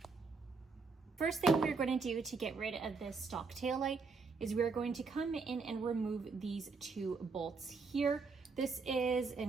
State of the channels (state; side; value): quieter; left; 4.6 dB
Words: First thing we're going to do to get rid of this stock tail light is we're going to come in and remove these two bolts here. This is